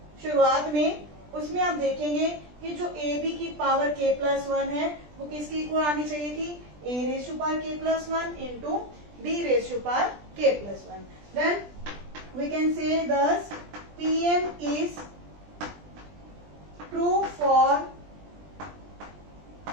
शुरुआत में उसमें आप देखेंगे कि जो ab की पावर k प्लस 1 है वो किसकी इक्वल आनी चाहिए थी, a raise to power k plus 1 into b raise to power k plus 1। Then we can say this Pn is true for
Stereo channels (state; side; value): late; left; 20 ms